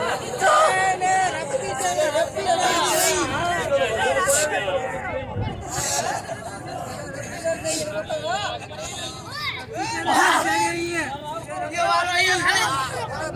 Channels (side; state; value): both; identical; correlation 1.00